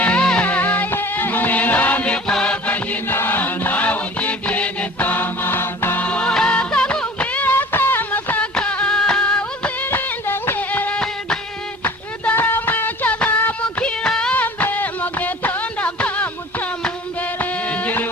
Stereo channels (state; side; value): normal; both; correlation 0.43